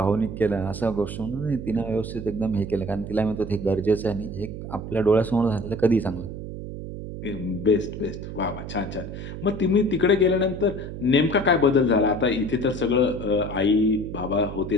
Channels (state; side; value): noise; right; hum, 8 dB below the sound